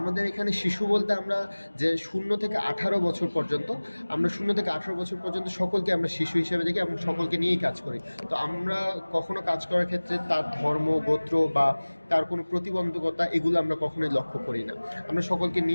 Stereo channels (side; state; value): both; inverted; correlation -1.00